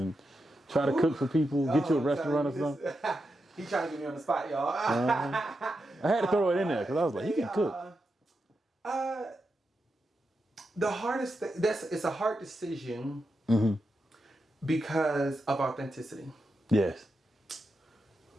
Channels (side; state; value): both; normal; correlation 0.87